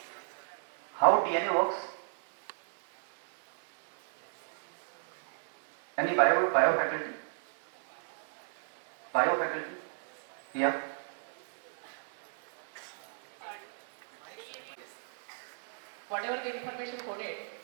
DNA works? Any bio faculty? Bio faculty? Yeah. Whatever the information coded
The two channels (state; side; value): silent; left; 55 dB below the other